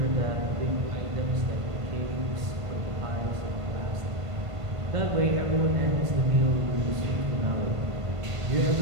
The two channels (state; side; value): late; left; 1.5 ms